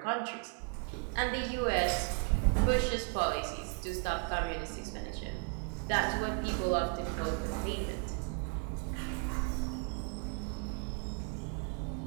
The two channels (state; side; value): quieter; left; 35.5 dB